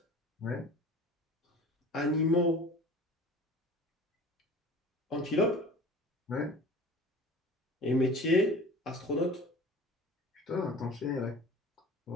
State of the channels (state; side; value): normal; both; correlation 0.41